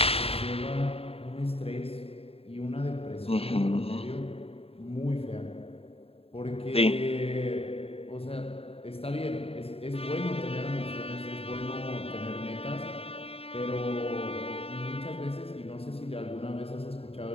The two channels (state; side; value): late; right; 0.28 ms